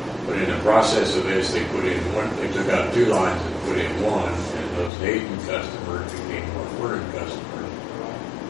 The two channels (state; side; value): drops out; right; at 4.9 s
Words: But in the process of this, they took out 2 lines and put in 1, and those Hayden customers became North Vernon customers.